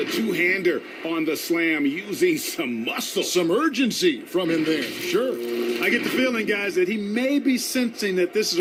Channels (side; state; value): both; identical; correlation 1.00